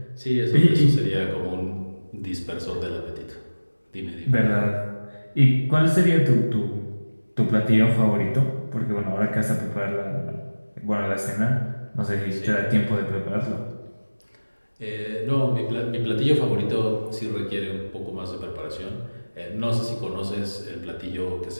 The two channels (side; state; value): both; inverted; correlation -1.00